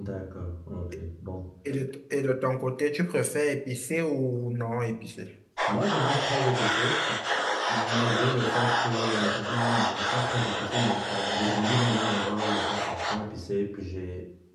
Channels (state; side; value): identical; both; correlation 1.00